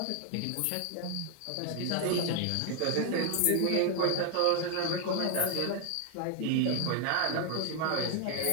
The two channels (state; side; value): different; both; correlation 0.00